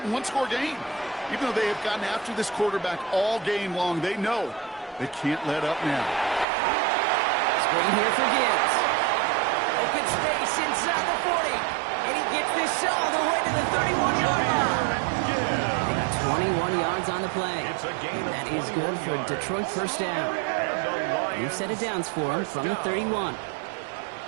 one-score game. Even though they have gotten after this quarterback all game long, they know they can't let up now. Screen here for Gibbs. Open space inside the 40. And he gets this all the way to the 31-yard line. They got 21 yards on the play. And that is good for Detroit 1st down. New set of downs for him from the 31.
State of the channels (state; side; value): drops out; left; at 6.5 s